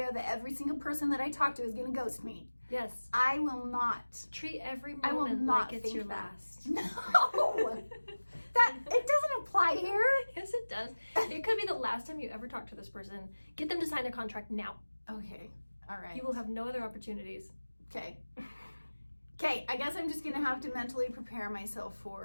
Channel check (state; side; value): inverted; both; correlation -1.00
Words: that every single person that I talk to is going to ghost me. Yes. I will not. Treat every moment like it's your last. No! It doesn't apply here. Yes, it does. It could be the last time you ever talk to this person. Get them to sign a contract now. Okay. All right. You will have no other opportunities. Okay. Okay, I guess I'm just going to have to mentally prepare myself